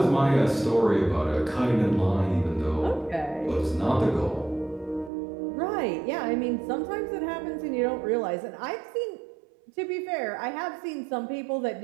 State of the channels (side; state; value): left; drops out; at 5.1 s